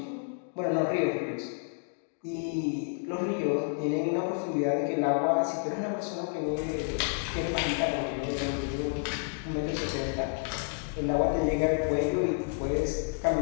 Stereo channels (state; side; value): silent; right; 58 dB below the other